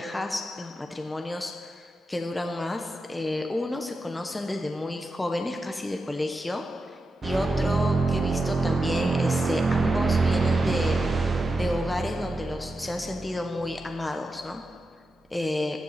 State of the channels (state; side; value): normal; both; correlation 0.89